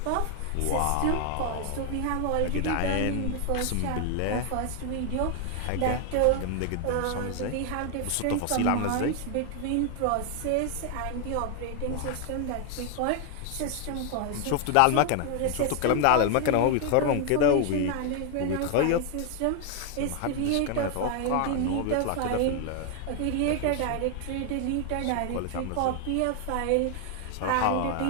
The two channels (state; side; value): different; both; correlation 0.00